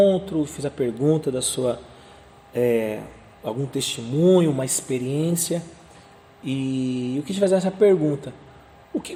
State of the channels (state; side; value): identical; both; correlation 1.00